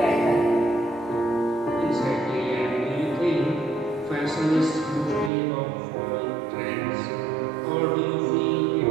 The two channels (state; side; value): drops out; left; at 5.3 s